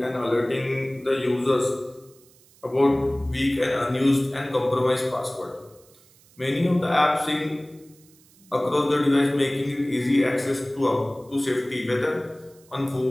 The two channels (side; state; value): right; noise; hiss, 28 dB below the sound